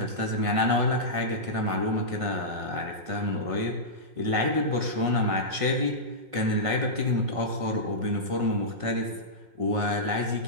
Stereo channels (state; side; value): late; left; 5.5 ms